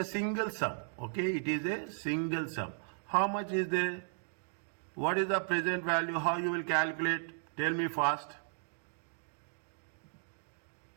single sum. Okay, it is a single sum. How much is there? What is the present value? How you will calculate? Tell me fast.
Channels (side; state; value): left; silent; digital silence